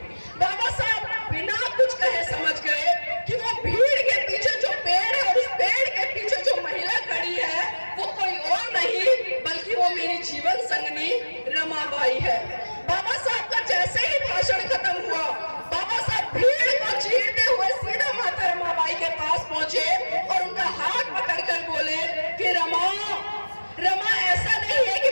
बाबा साहब बिना कुछ कहे समझ गए कि वो भीड़ के पीछे जो पेड़ है और उस पेड़ के पीछे जो महिला खड़ी है वो कोई और नहीं बल्कि वो मेरी जीवन संगनी रमाबाई है। बाबा साहब का जैसे ही भाषण खत्म हुआ, बाबा साहब भीड़ को चीरते हुए सीधा माता रमाबाई के पास पहुंचे और उनका हाथ पकड़कर बोले कि रमा रमा ऐसा नहीं है कि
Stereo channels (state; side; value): inverted; both; correlation -1.00